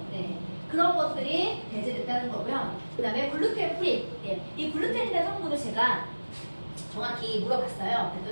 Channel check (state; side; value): inverted; both; correlation -1.00